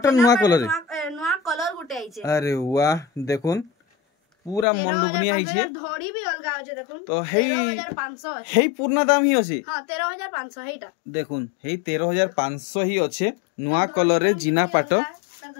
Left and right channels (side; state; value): right; drops out; at 4.7 s